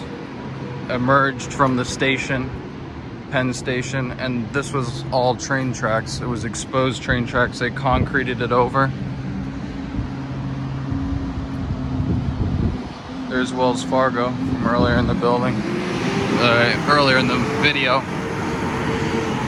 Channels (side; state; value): both; identical; correlation 1.00